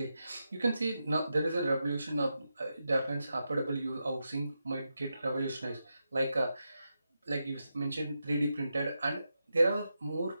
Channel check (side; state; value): both; inverted; correlation -0.88